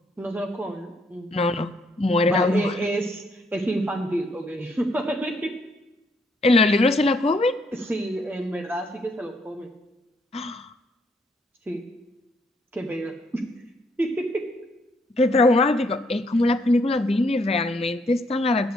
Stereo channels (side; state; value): both; normal; correlation 0.71